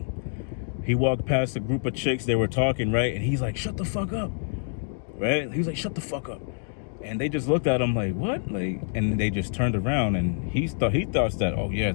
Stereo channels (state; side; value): silent; right; 61 dB below the other